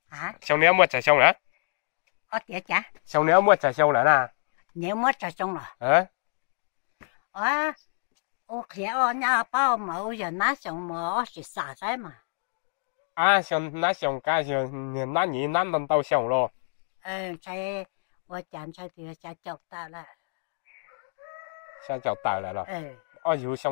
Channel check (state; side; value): silent; right; digital silence